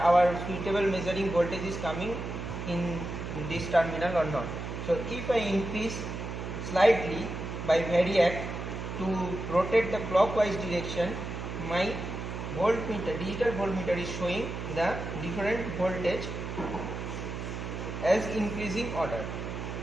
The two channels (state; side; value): noise; right; hum, 6 dB below the sound